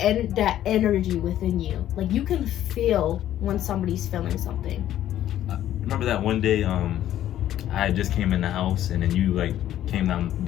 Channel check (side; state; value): right; quieter; 12.2 dB